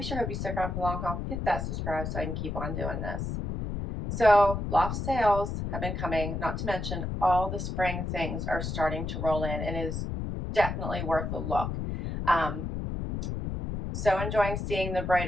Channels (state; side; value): noise; left; rumble, 4 dB below the sound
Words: sure hope you stick around for the long haul. Hit that subscribe so I can keep on doing this. So Loft sales have been coming, not to mention all the spring things are starting to roll in, and it is definitely worth a look. So enjoying seeing the